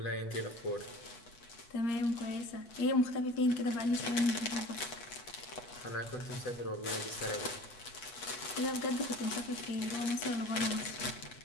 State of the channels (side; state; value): right; late; 8.2 ms